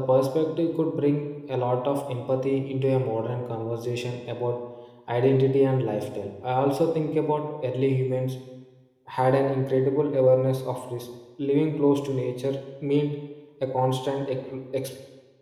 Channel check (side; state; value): both; identical; correlation 1.00